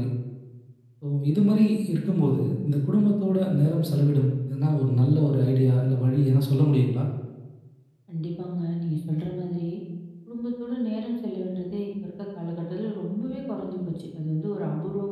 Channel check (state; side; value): identical; both; correlation 1.00